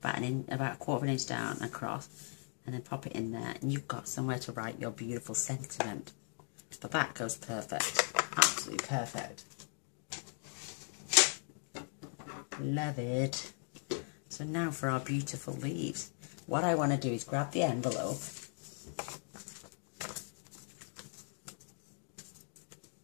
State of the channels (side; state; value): right; silent; 52 dB below the other